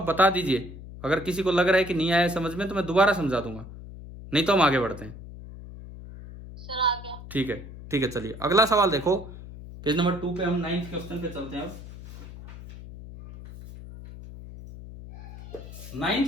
बता दीजिए, अगर किसी को लग रहा है कि नहीं आया समझ में तो मैं दोबारा समझा दूंगा, नहीं तो हम आगे बढ़ते हैं। सर आ गया। ठीक है, चलिए अगला सवाल देखो, पेज नंबर 2 पे हम 9th क्वेश्चन पे चलते हैं। अब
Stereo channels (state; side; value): noise; left; hum, 14 dB below the sound